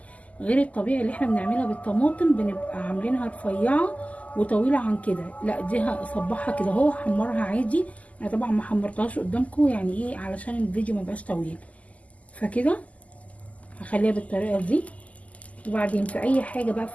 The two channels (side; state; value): right; late; 0.071 ms